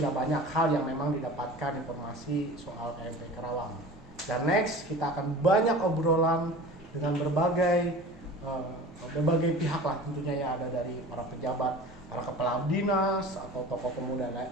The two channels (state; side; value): normal; both; correlation 0.39